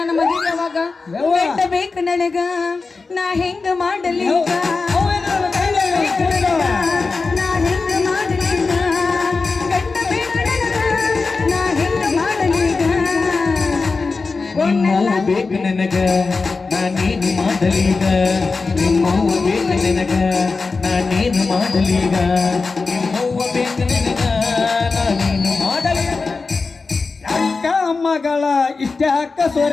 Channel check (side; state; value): right; quieter; 4.2 dB